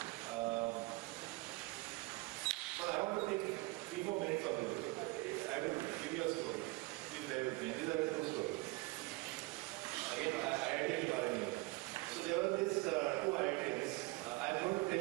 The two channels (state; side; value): quieter; left; 22.9 dB